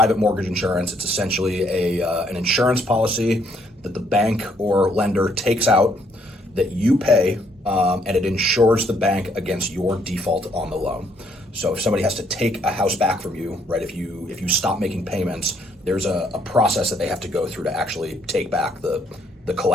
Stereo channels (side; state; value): both; normal; correlation 0.69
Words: mortgage insurance. It's essentially an insurance policy that the bank or lender takes out that you pay, and it insures the bank against your default on the loan. So if somebody has to take a house back from you, right? If you stop making payments, there's a process that they have to go through to actually take back the